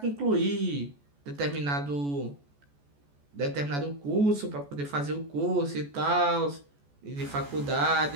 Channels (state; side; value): late; left; 14 ms